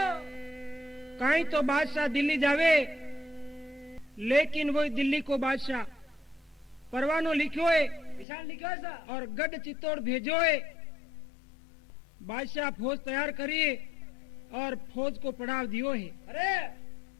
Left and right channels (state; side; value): drops out; right; at 8.2 s